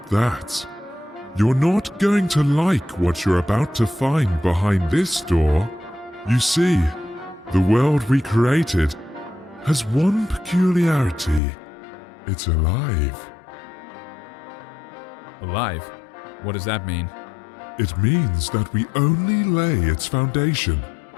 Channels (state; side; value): drops out; right; at 11.4 s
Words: that. You're not going to like what you're about to find behind this door. You see, the world we created has one peculiarity. It's alive. Alive? What does that mean? It means that we only lay its foundation,